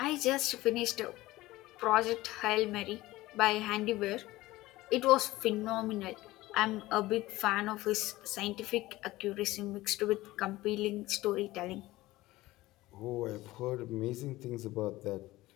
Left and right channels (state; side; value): quieter; right; 18.1 dB